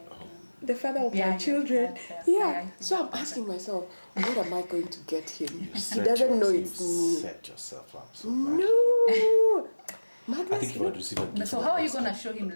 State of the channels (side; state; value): both; inverted; correlation -1.00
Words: know. The father of Yeah, my children. yes, Yeah. I So I'm think asking myself, what am I going to get him? You He set doesn't know yourself- it's you me. set yourself up so bad. No. I think Magnus, if I would receive a gift, So how are you going to show him